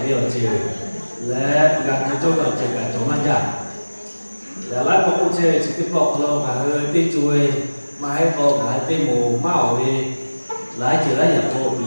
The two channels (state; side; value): inverted; both; correlation -1.00